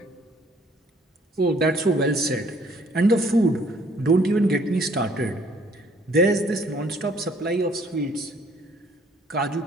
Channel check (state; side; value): normal; both; correlation 0.61